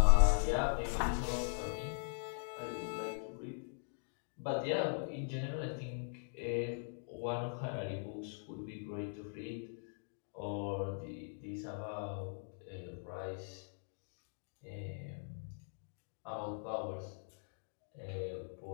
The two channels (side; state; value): right; silent; digital silence